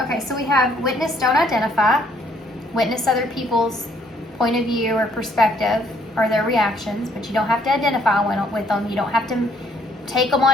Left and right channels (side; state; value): both; normal; correlation 0.66